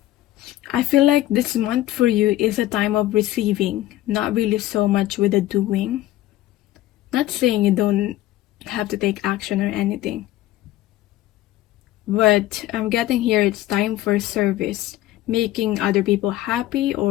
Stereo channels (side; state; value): right; quieter; 15.0 dB